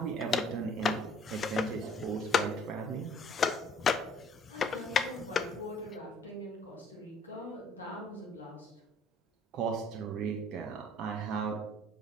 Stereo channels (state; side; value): normal; both; correlation 0.58